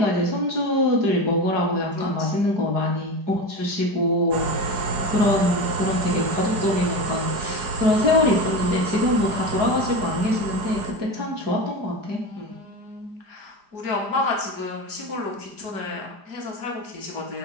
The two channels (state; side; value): late; left; 4.9 ms